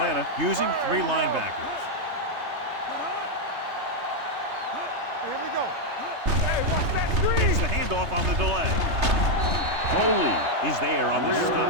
using 3 linebackers. Here we go. Hey, watch that screen. It's the handoff on the delay. Foley is there on the stop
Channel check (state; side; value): late; left; 3.3 ms